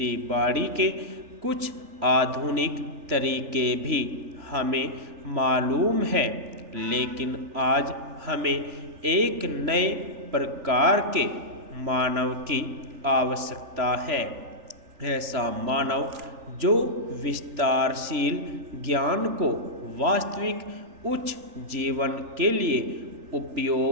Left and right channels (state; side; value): late; left; 3.4 ms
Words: बाड़ी के कुछ आधुनिक तरीके भी हमें मालूम है, लेकिन आज हमें एक नए प्रकार के मानव की आवश्यकता है। ऐसा मानव जो विस्तारशील ज्ञान को वास्तविक उच्च जीवन के लिए